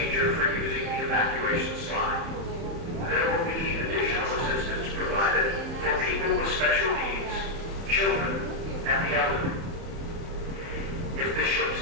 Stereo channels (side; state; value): left; late; 30 ms